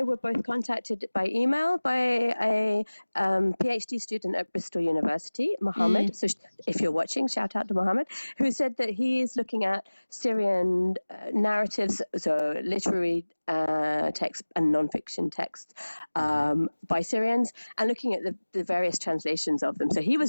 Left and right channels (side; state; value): both; inverted; correlation -1.00